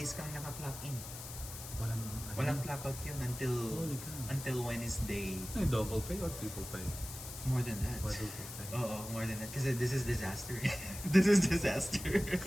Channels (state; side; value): noise; left; hiss, 11 dB below the sound